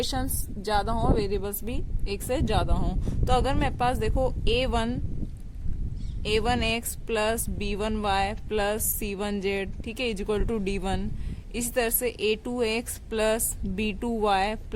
ज्यादा हो, वेरिएबल्स भी एक से ज्यादा हो। तो अगर मेरे पास देखो a1x plus b1y plus c1z, ठीक है, इज इक्वल टू d1। इसी तरह से a2x plus b2y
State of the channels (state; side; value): identical; both; correlation 1.00